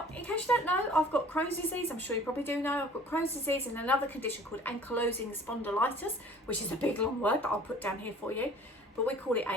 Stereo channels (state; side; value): normal; both; correlation 0.49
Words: in case you don't know, I've got Crohn's disease. I'm sure you probably do know. I've got Crohn's disease and another condition called ankylosing spondylitis, which is a big long word that I'll put down here for you, but we call it